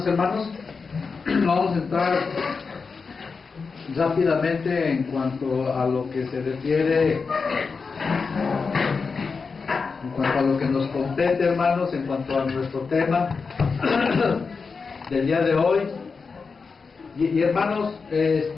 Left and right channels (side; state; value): right; quieter; 4.9 dB